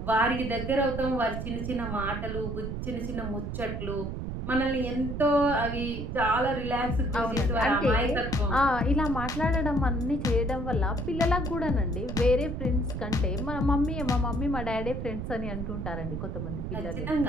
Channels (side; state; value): right; noise; rumble, 5 dB below the sound